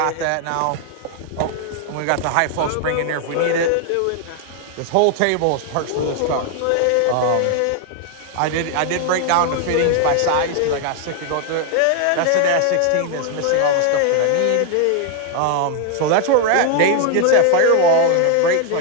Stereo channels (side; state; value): both; different; correlation 0.00